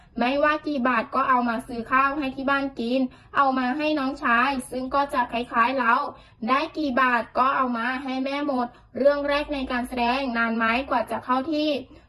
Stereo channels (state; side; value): identical; both; correlation 1.00